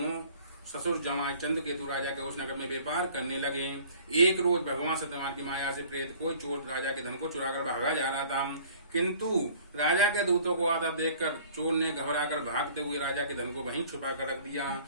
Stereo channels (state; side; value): inverted; both; correlation -0.51